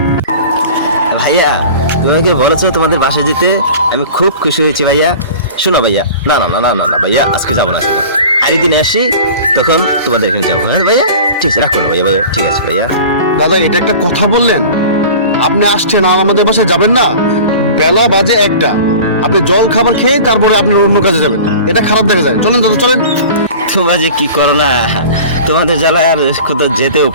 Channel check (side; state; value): both; inverted; correlation -0.39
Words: ভাইয়া তুমি আমাকে বলেছো তোমাদের বাসায় যেতে, আমি খুব খুশি হয়েছি ভাইয়া। শোনো ভাইয়া, না না না না না না ভাইয়া, আজকে যাবো না, আজকে আরেকদিন আসি, তখন তোমাদের এখানে যাবো। হ্যাঁ ভাইয়া, ঠিক আছে, রাখো না ভাইয়া, ভাইয়া ঠিক আছে ভাইয়া। দাদা এটা একটা কথা বললেন? আপনি আসছেন আর আমাদের বাসায় যাবেন না? বেলা বাজে 1টা, আপনি জল খাবার খেয়ে তারপরে আপনি অন্য কাজে যাবেন, এটা খারাপ দেখা যায়। চলেন দাদা চলেন। তোমরা যে কি করো না, তোমাদের জ্বালায় আর কোথাও যেতেও